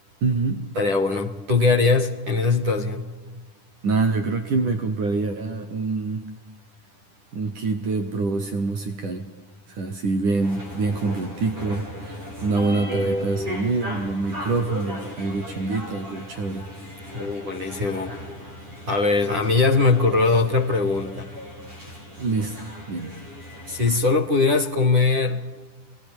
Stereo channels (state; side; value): late; left; 10 ms